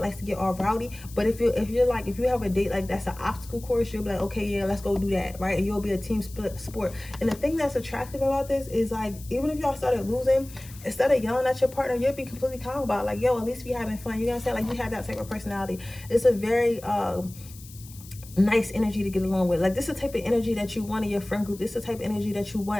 to get all rowdy. But if you have a date like that's an obstacle course, you'll be like, okay, yeah, let's go do that, right? And you'll be a team sport. And the thing that's attractive about this is like, even if y'all started losing, instead of yelling at your partner, you'll be completely calm about it. Like, yo, at least we having fun. You know what I'm saying? Like you have that type of personality. It's a very nice energy to get along with. Like this is the type of energy that you want in your friend group. This is the type of energy that you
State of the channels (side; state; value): left; noise; hiss, 19 dB below the sound